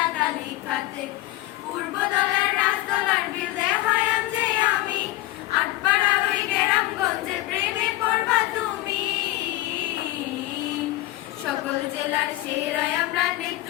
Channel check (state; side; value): quieter; right; 17.1 dB